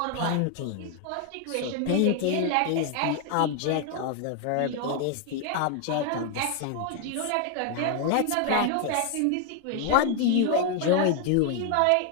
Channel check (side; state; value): both; different; correlation 0.00